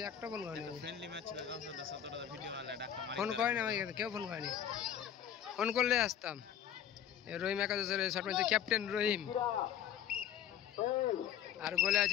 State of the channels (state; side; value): quieter; right; 9.6 dB